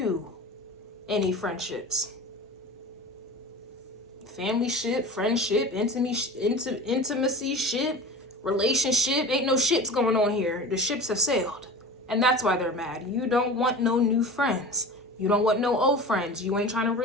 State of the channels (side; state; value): both; normal; correlation 0.34